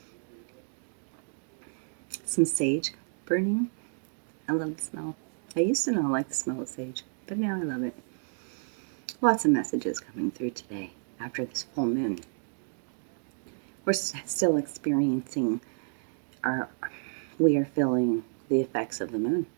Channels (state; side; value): silent; left; 57 dB below the other